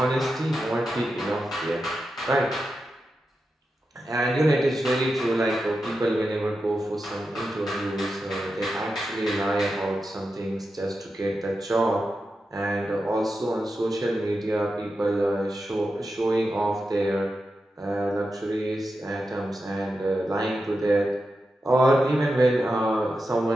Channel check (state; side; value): normal; both; correlation 0.89